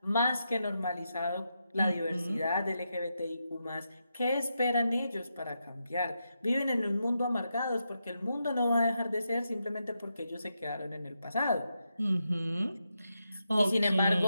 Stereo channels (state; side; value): inverted; both; correlation -0.85